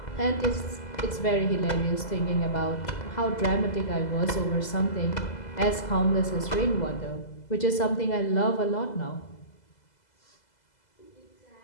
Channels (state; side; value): late; right; 2.0 ms